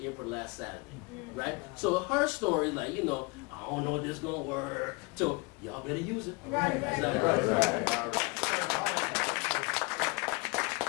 airport last Saturday. Right? So her story, like, you know, I don't know if this is going to work. So y'all better use it. Right.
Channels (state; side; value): quieter; right; 28.9 dB